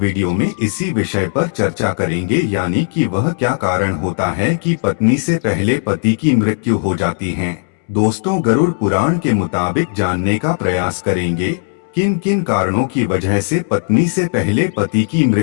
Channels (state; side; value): silent; right; 69 dB below the other